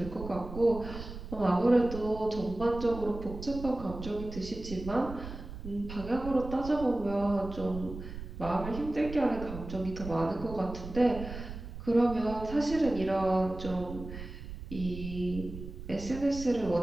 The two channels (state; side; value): noise; right; rumble, 10 dB below the sound